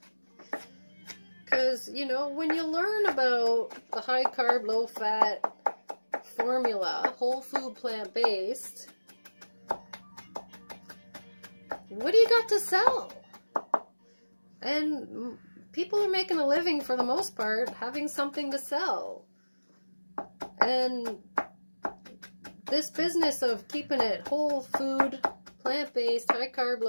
Because, you know, when you learn about the high carb, low fat formula, whole food, plant-based, what do you got to sell? And people are making a living for the most part having something to sell. And this business of keeping it whole food, plant-based, high carb,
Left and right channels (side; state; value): both; inverted; correlation -1.00